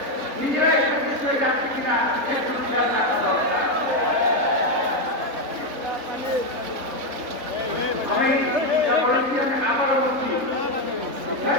নিজেরাই বিষয়ে যাচ্ছি কিনা আমি আবারও বলছি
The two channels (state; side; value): late; left; 3.8 ms